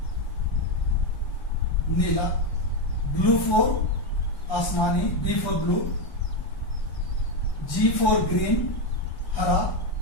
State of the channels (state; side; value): late; right; 1.1 ms